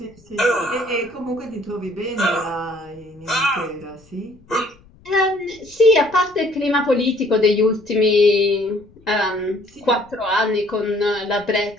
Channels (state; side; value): noise; left; rumble, 28 dB below the sound